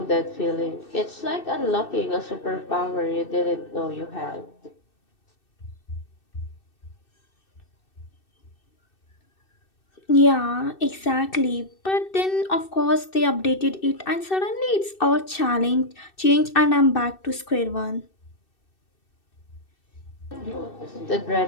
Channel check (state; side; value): late; right; 2.6 ms